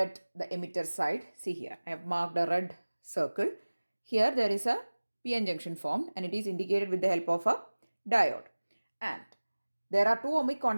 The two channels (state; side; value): inverted; both; correlation -1.00